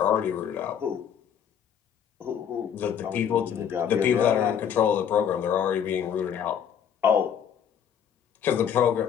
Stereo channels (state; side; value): quieter; right; 8.5 dB